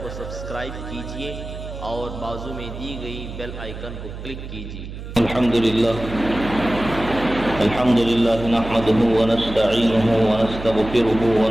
کو سبسکرائب کیجیے اور بازو میں دی گئی بیل آئیکن کو کلک کیجیے۔ الحمد لله نحمده ونستعينه ونستغفره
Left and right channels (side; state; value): right; noise; hum, 10 dB below the sound